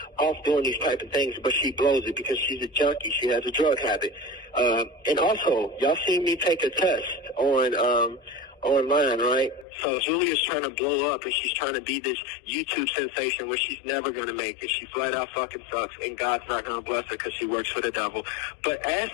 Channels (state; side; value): drops out; right; at 9.7 s